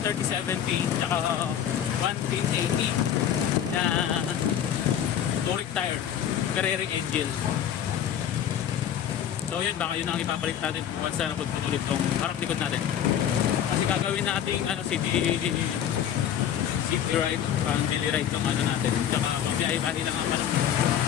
tsaka 110/80 na touring tire, Carrera engine. So yun, baka yun ang ipapalit natin once na napagputulit tong harap likod natin. Kasi gagawin natin city ride, daily ride ng natin. Saka magbiyahe-biyahe lang ang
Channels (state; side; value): quieter; right; 9.6 dB